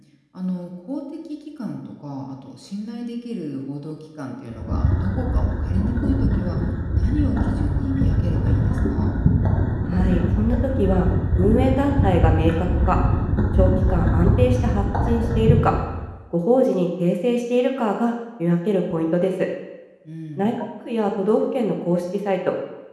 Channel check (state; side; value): identical; both; correlation 1.00